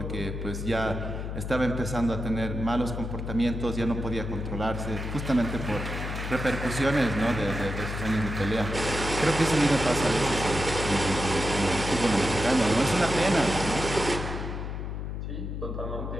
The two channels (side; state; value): left; noise; hum, 5 dB below the sound